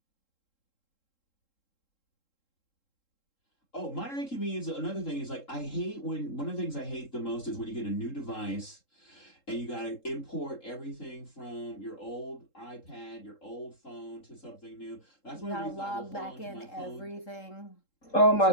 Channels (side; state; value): right; late; 3.7 ms